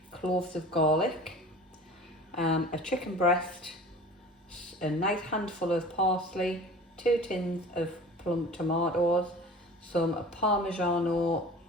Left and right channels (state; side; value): normal; both; correlation 0.41